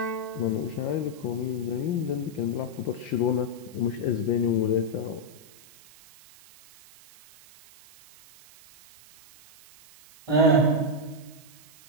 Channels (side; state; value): right; noise; hiss, 23 dB below the sound